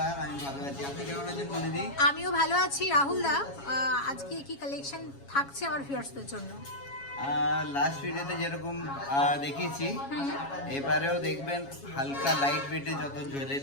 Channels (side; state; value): right; late; 7.2 ms